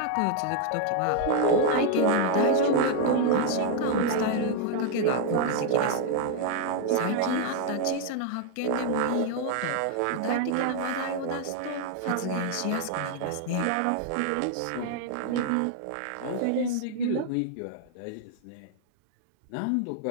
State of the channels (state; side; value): different; both; correlation 0.00